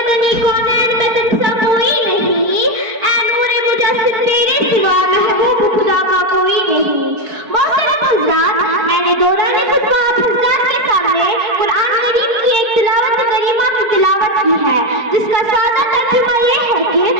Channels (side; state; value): left; late; 4.4 ms